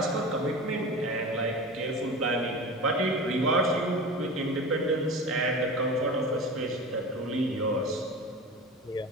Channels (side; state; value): both; normal; correlation 0.31